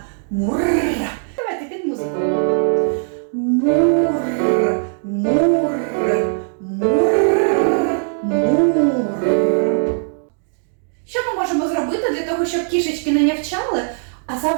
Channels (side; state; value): left; silent; 62 dB below the other